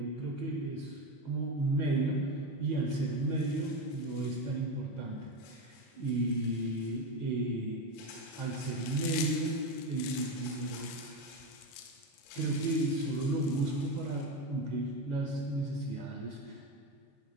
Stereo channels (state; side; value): late; right; 21 ms